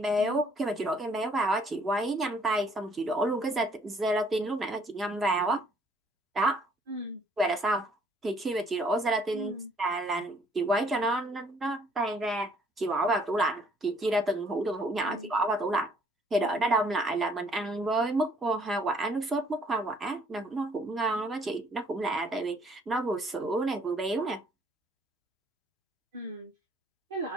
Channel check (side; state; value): both; normal; correlation 0.62